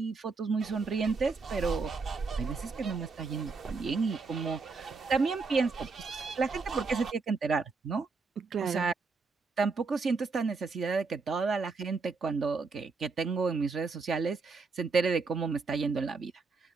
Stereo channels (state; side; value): quieter; left; 4.4 dB